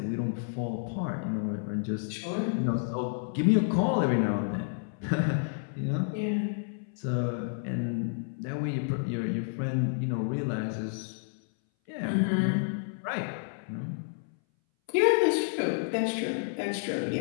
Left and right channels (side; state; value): right; silent; 58 dB below the other